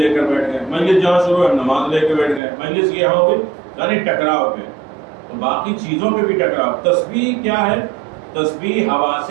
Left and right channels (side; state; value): left; drops out; at 2.4 s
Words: کر بیٹھ گئے، مجلس جہاں شروع ہوئی ہم نماز لے کے بیٹھ گئے، مجلس یہاں ہو گئی، یعنی ٹکراؤ پہ. تو باقی چیزوں پہ بھی ٹکراؤ. تسبیح کیا ہے؟ تسبیح حواس